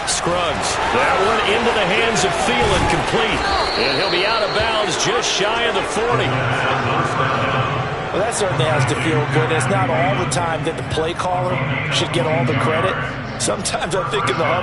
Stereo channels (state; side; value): identical; both; correlation 1.00